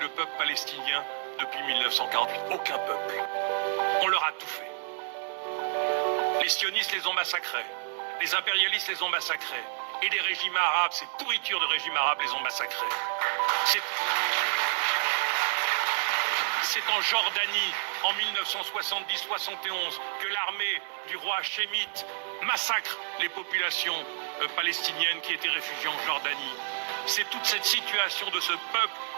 peuple palestinien depuis 1948. Aucun peuple. On leur a tout fait. Les sionistes les ont massacrés. Les impérialistes les ont massacrés. Et les régimes arabes, ces pourritures de régimes arabes les ont massacrés. C'est en Jordanie, en 1970-71, que l'armée du roi Hachémite massacre les populations palestiniennes qui étaient réfugiées en Jordanie. C'est toute cette situation de ce peuple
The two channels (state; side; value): silent; left; 58 dB below the other